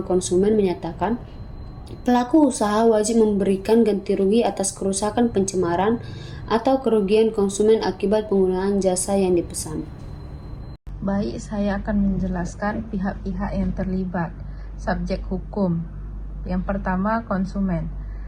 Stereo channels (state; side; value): identical; both; correlation 1.00